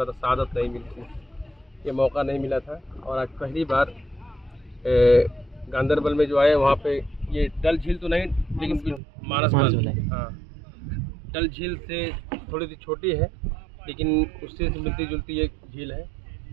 था, सआदत नहीं मिली थी, ये मौका नहीं मिला था। और आज पहली बार गांदरबल में जो आए वहाँ पे ये डल झील तो नहीं लेकिन मानस बल, हाँ डल झील से थोड़ी सी छोटी है लेकिन उससे मिलती जुलती एक झील है।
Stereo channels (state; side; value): drops out; left; at 9.0 s